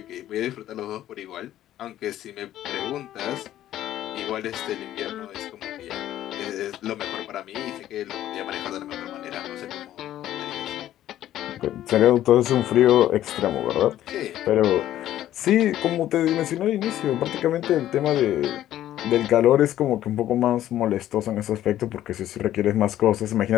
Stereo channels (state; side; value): quieter; right; 12.7 dB